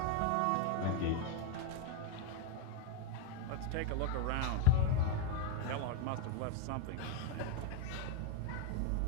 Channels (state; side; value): different; both; correlation 0.01